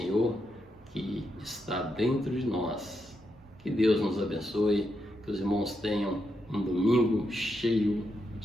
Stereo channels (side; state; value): both; normal; correlation 0.83